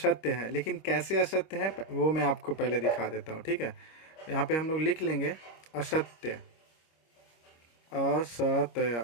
है, लेकिन कैसे असत्य है वो मैं आपको पहले दिखा देता हूँ, ठीक है। यहाँ पे हम लोग लिख लेंगे असत्य, असत्य,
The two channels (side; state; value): right; late; 25 ms